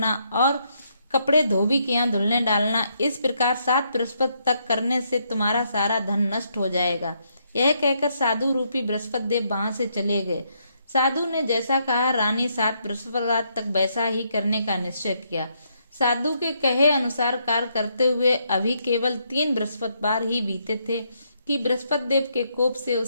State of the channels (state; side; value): inverted; both; correlation -0.75